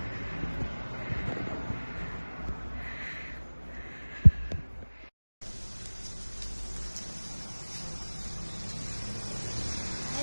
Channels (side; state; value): both; inverted; correlation -1.00